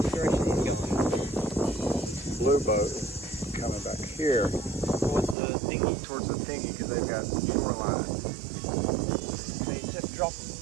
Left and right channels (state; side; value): drops out; left; at 5.4 s